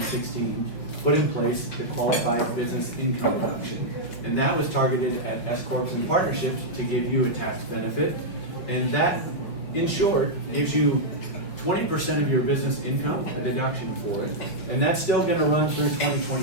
put in place the qualified business income deduction. And that was targeted at S Corps and partnerships to give you a tax benefit. And that, in short, gives you 20% of your business income, a deduction for it. And that's still going to run through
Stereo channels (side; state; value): right; late; 5.7 ms